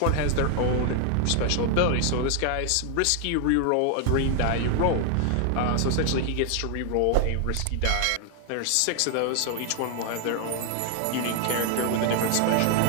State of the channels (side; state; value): both; different; correlation 0.00